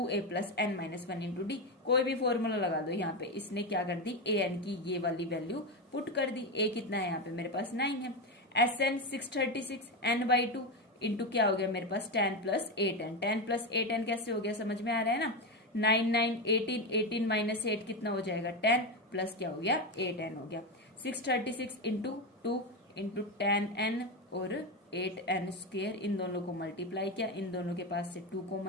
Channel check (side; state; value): both; normal; correlation 0.13